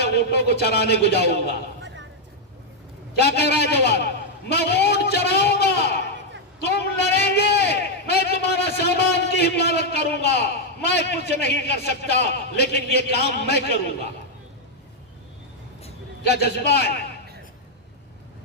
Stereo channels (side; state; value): both; normal; correlation -0.01